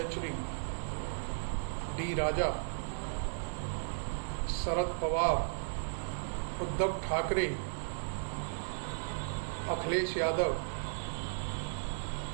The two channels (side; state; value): left; silent; digital silence